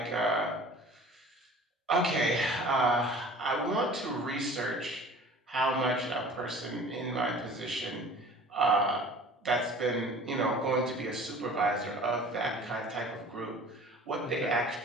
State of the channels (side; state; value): both; normal; correlation 0.45